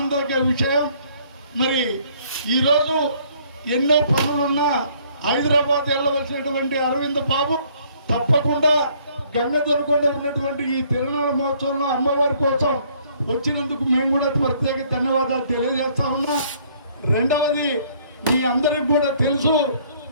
విషయం. మరి ఈరోజు ఎన్నో పనులున్నా హైదరాబాద్ వెళ్ళవలసినటువంటి అరవింద బాబు తప్పకుండా గంగదొరకొండ ఉన్నటువంటి ఈ తిరునాళ్ళ మహోత్సవంలో అమ్మవారి కోసం వచ్చినందుకు మేము కూడా ప్రత్యేక ధన్యవాదాలు తెలియజేస్తా ఉన్నా. రెండవది, మీ అందరికి కూడా తెలుసు,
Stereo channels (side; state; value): both; inverted; correlation -0.62